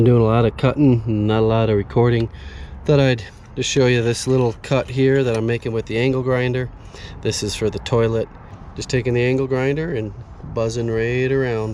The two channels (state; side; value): identical; both; correlation 1.00